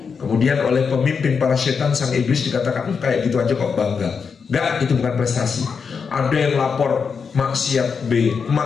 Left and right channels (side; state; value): right; quieter; 5.8 dB